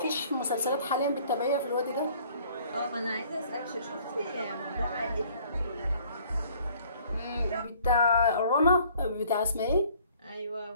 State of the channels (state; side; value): inverted; both; correlation -0.56